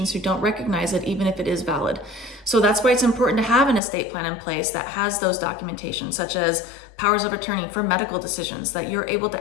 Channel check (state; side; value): drops out; right; at 3.8 s